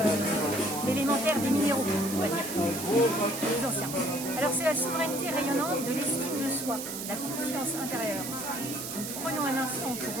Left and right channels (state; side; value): noise; right; hiss, 7 dB below the sound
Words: L'élémentaire des minéraux, on va dire. Les anciens. Alors c'est la souveraineté rayonnante de l'estime de soi, la confiance intérieure. Donc, prenons un instant pour